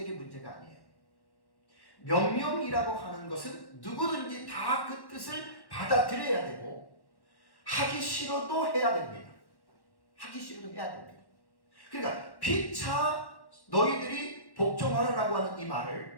문제가 아니에요. 명령이라고 하는 것은 누구든지 다 그 뜻을 받아들여야 되고 하기 싫어도 해야 됩니다. 하기 싫어도 해야 됩니다. 그러니까 피차 너희들이 복종하라고 하는 이 말을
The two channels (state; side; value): late; right; 1.1 ms